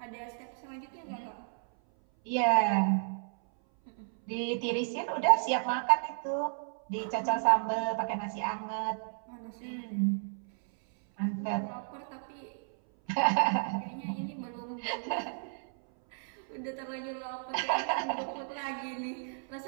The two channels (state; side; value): silent; left; 56 dB below the other